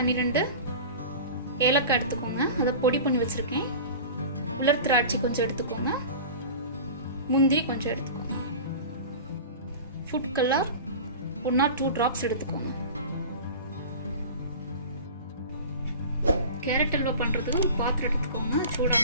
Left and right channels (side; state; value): both; inverted; correlation -0.35